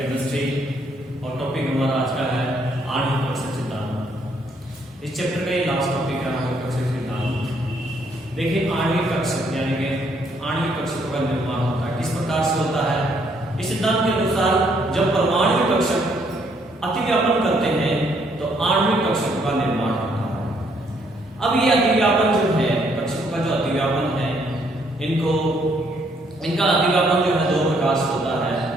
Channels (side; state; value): both; normal; correlation 0.69